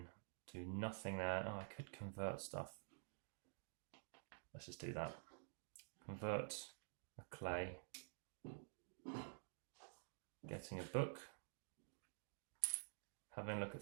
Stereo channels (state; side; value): silent; left; digital silence